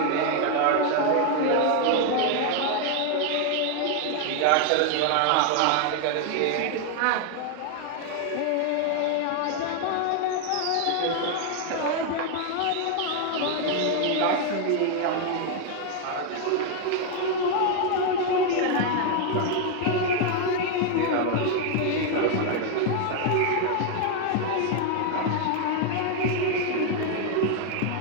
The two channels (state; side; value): different; both; correlation 0.00